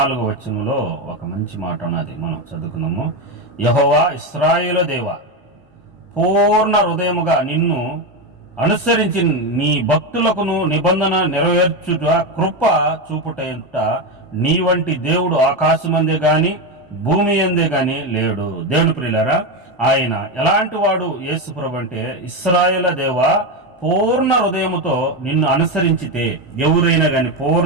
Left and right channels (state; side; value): normal; both; correlation 0.13